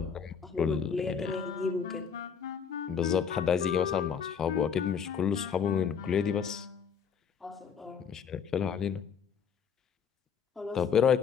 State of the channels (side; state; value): right; quieter; 7.0 dB